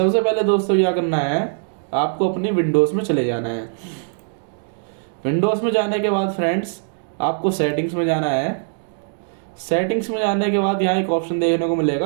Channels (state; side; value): silent; left; digital silence